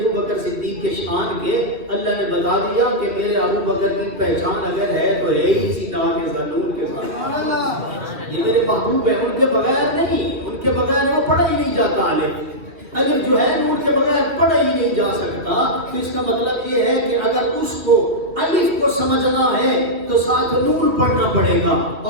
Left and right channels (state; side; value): late; left; 2.5 ms